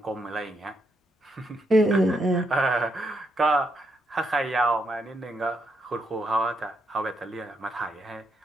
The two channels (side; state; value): both; normal; correlation 0.79